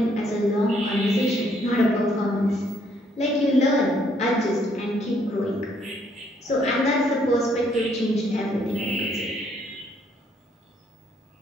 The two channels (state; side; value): normal; both; correlation 0.69